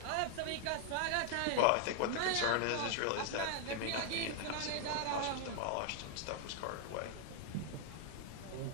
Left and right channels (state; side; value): different; both; correlation 0.00